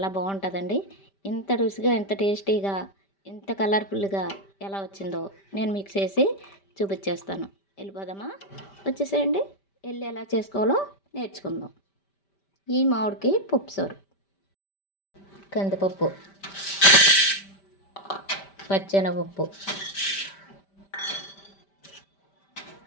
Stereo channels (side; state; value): right; late; 5.1 ms